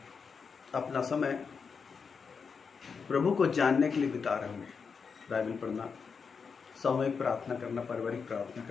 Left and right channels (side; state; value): right; quieter; 5.6 dB